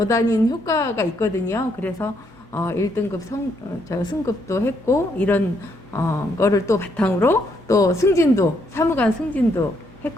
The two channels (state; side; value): normal; both; correlation 0.73